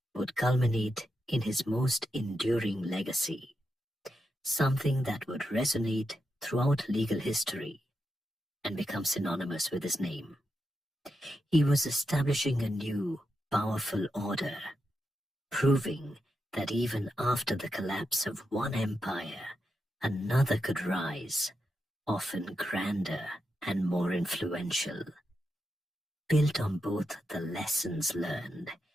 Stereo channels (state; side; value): normal; both; correlation 0.86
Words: would culminate in his most enduring legacy, something that would resonate throughout legal history and become synonymous with his name. He was establishing a new, powerful order, proving that even after the collapse of one empire, another could rise, often grander and more influential, built on both the lessons learned